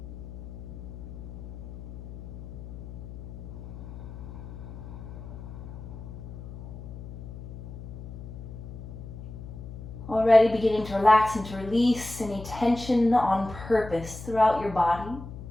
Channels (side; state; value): left; noise; hum, 11 dB below the sound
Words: Already beginning to relax and to release any tension on purpose throughout your body.